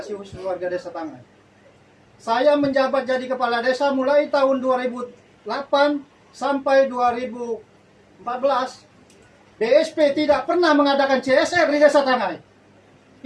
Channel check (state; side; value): identical; both; correlation 1.00